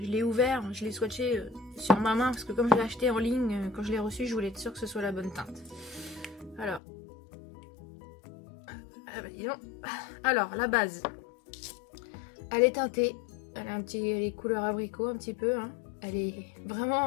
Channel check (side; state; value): right; drops out; at 6.8 s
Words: ouvert, je l'ai swatché sur ma main, parce que comme je l'ai acheté en ligne, quand je l'ai reçu, je voulais être sûre que ce soit la bonne teinte. Alors, la base, elle est teintée, elle a les couleurs abricot un petit peu, hein. Elle est